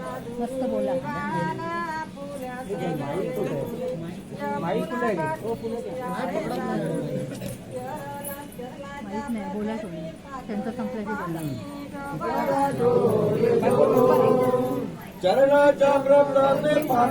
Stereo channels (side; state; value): both; identical; correlation 1.00